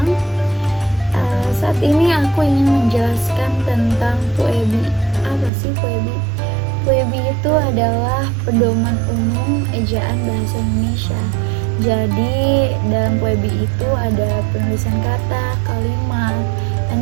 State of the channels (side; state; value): left; drops out; at 5.5 s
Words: Saat ini aku ingin menjelaskan tentang PUEBI. Apa sih PUEBI? PUEBI itu adalah pedoman umum ejaan bahasa Indonesia. Jadi dalam PUEBI itu ada penulisan kata, kalimat,